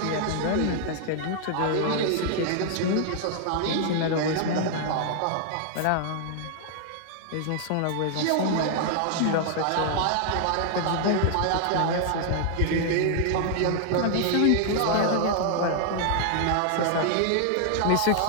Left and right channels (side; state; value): both; different; correlation 0.00